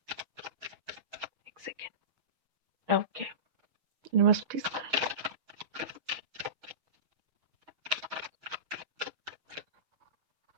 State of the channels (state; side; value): late; left; 6.4 ms